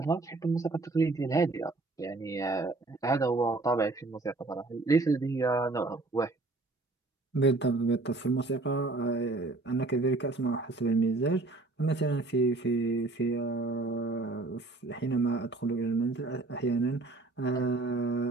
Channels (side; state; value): left; quieter; 3.3 dB